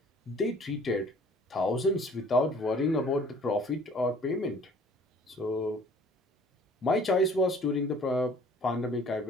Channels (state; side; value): normal; both; correlation 0.53